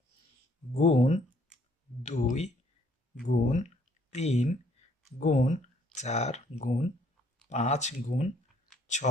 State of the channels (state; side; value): normal; both; correlation 0.64